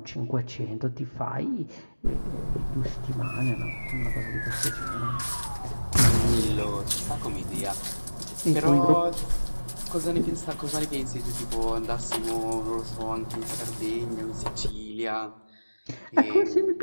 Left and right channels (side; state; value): both; inverted; correlation -1.00